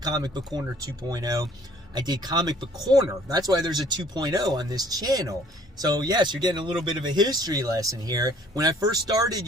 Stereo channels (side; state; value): both; normal; correlation 0.57